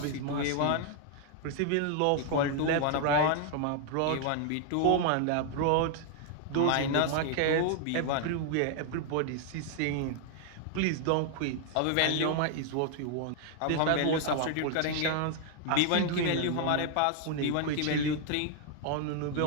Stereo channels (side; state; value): both; different; correlation 0.00